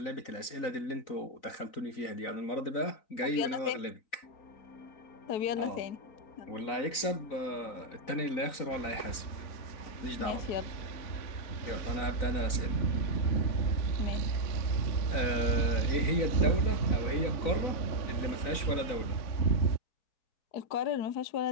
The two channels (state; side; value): late; right; 4.0 ms